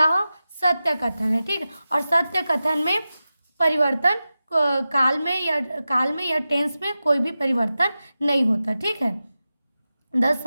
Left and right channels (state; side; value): inverted; both; correlation -0.93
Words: सत्य कथन है। ठीक, और सत्य कथन में परिवर्तन काल में या टेंस में कोई भी परिवर्तन नहीं होता। ठीक है, the